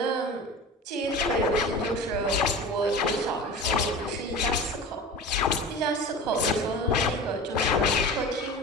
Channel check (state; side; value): normal; both; correlation 0.34